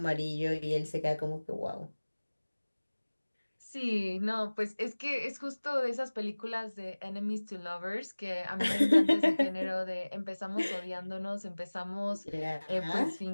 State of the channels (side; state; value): both; inverted; correlation -1.00